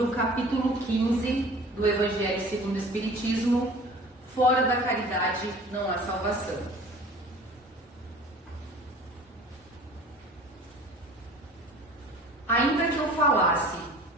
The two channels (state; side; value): normal; both; correlation 0.45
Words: o capítulo 15 do Evangelho segundo o Espiritismo. Fora da caridade não há salvação. Ainda que eu falasse